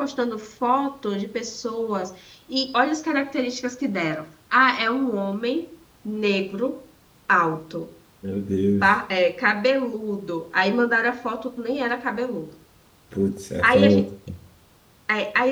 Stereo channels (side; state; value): both; identical; correlation 1.00